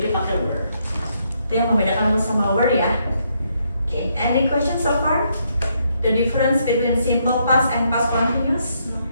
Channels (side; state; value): both; inverted; correlation -0.75